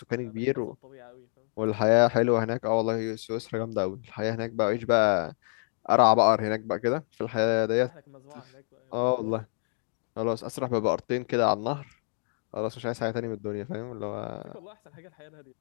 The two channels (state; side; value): silent; right; digital silence